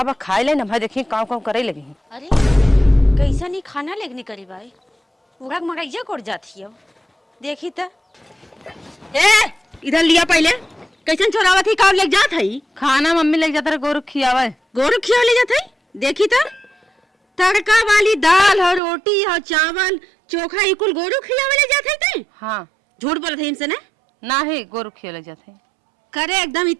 बा खाए ले ना देखी काम काम करे लगी। अरे कैसा नहीं खाना लेगनी करी भाई पूरा मरैया कोड़ जाती है देखी तो ए इधर लिया पहले कैसन चोरावत ही काम ले जात है खाना मम्मी ले जाता गोरु खियावे गोरु खिया ले जात है देखी तो तड़का वाली दाल और रोटी और चावल चोखा इकुल गोरु खियावे ले जात है ते। हाँ झूठ बोलत है इनसे ना ही गोरु खिया ले जाते करे एकदम ही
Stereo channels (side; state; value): left; drops out; at 18.8 s